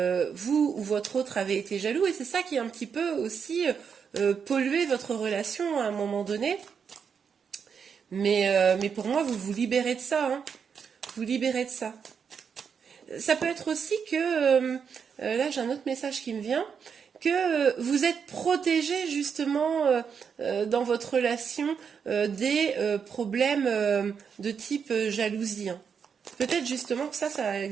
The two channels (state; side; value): quieter; left; 6.7 dB